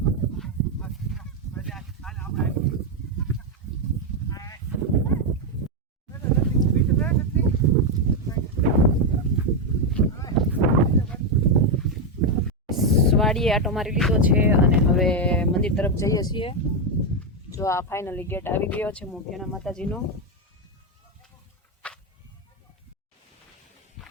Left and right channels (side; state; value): both; normal; correlation 0.05